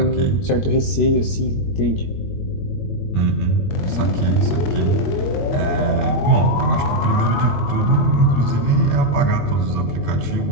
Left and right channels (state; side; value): late; right; 21 ms